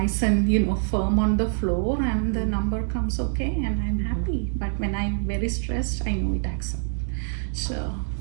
and, you know, firm on the floor, and the number comes okay and I'm happy. But when I'm very stressed, I know it acts up. So,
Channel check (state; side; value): silent; left; digital silence